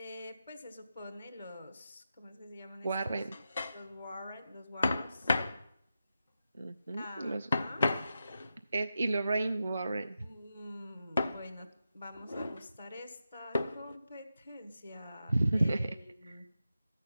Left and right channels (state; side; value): inverted; both; correlation -0.89